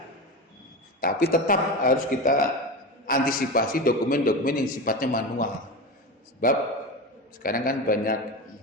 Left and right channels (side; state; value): both; normal; correlation 0.23